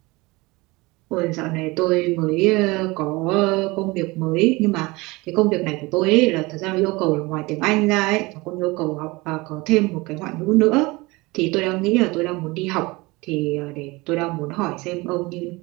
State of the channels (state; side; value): quieter; left; 23.2 dB